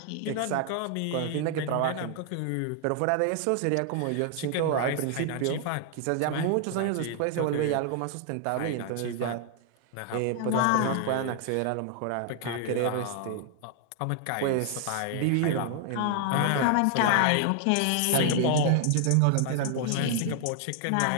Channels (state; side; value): different; both; correlation 0.00